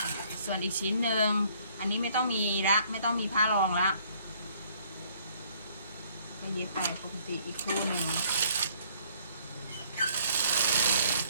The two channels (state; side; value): inverted; both; correlation -0.61